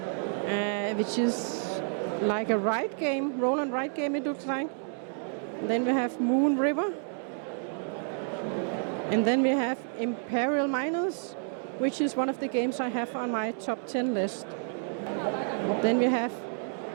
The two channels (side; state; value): left; silent; 58 dB below the other